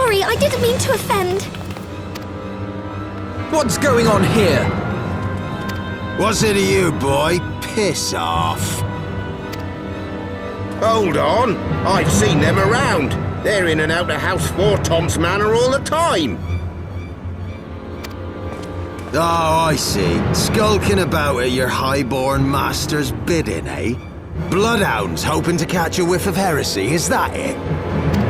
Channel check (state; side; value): identical; both; correlation 1.00